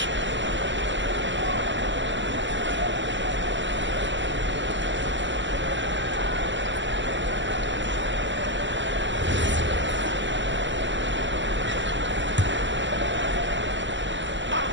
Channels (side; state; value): left; late; 0.54 ms